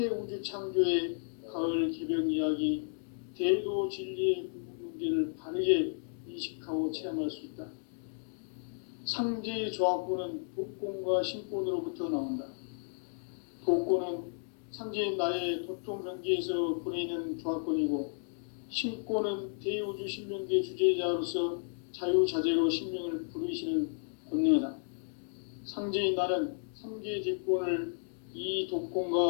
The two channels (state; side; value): silent; right; digital silence